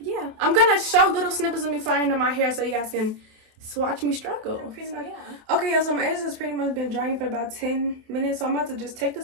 I'm gonna show little snippets of me flying into my hair so you guys can watch me struggle. Pretty much, yeah. Okay, y'all, so my edges has pretty much been drying for about 10 minutes. So I'm about to just take the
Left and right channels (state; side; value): late; left; 28 ms